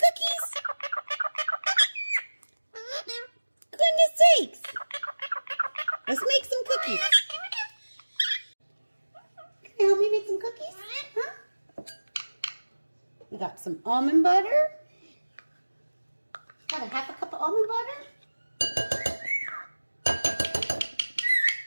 Goodness sakes. Let's make some cookies. Can you help me make some cookies? Huh? We got some almond butter. Got a half a cup of almond butter.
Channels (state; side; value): inverted; both; correlation -1.00